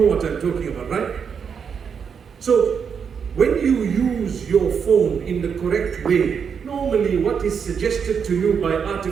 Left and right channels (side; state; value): left; quieter; 6.8 dB